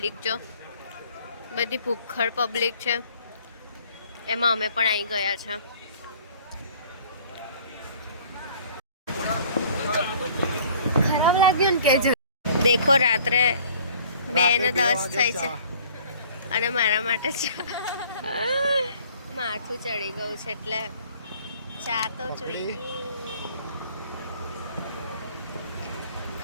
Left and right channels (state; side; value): inverted; both; correlation -0.54